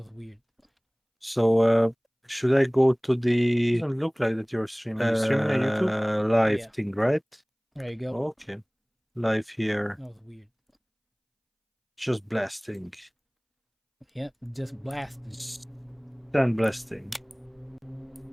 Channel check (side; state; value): both; identical; correlation 1.00